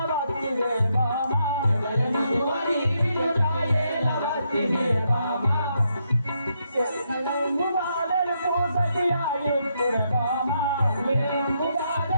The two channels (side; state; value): both; inverted; correlation -0.79